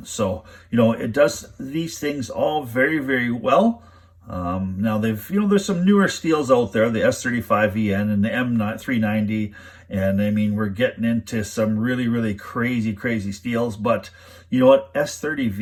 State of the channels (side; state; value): both; identical; correlation 1.00